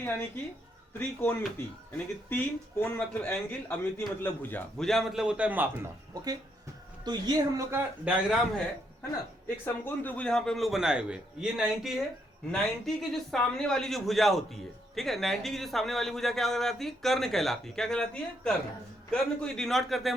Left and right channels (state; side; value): normal; both; correlation 0.75